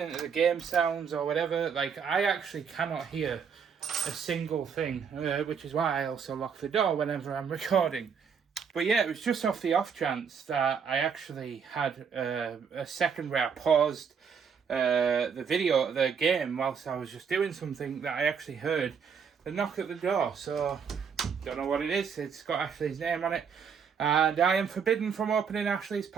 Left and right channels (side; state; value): left; quieter; 6.6 dB